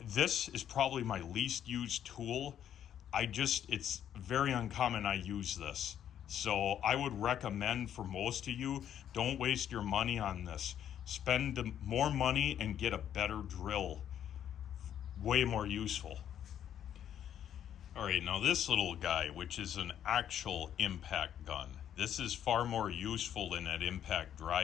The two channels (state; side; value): quieter; right; 10.0 dB